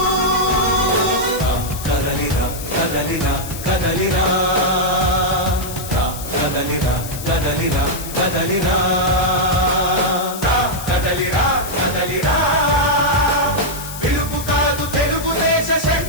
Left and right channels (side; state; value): left; noise; hiss, 11 dB below the sound